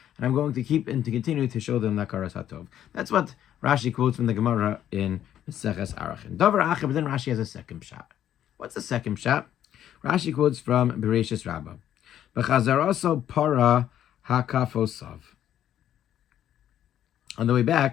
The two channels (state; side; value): quieter; right; 11.0 dB